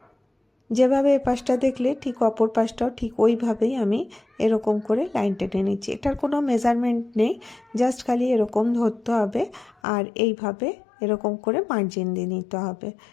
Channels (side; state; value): right; drops out; at 9.7 s